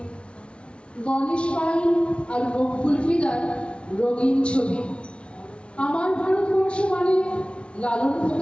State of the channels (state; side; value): late; right; 0.059 ms